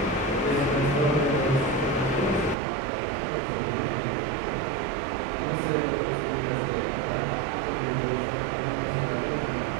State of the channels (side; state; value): left; drops out; at 2.6 s